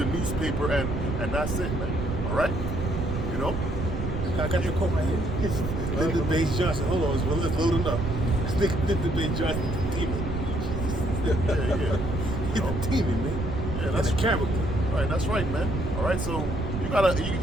newspaper and that's it, man. All right. You know. I got the quote right here. Lyndon Baines Johnson. Hold on, it's loading up. Lyndon Baines Johnson, the demon. Yeah. He's a demon, man. Yeah, that's a character. Right, that's right, man. All right, so you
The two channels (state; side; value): noise; right; rumble, 3 dB below the sound